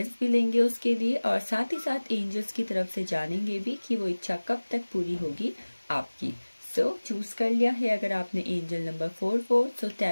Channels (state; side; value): inverted; both; correlation -1.00